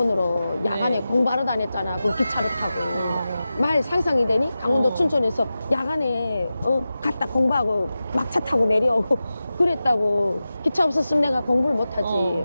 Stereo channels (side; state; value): both; inverted; correlation -0.94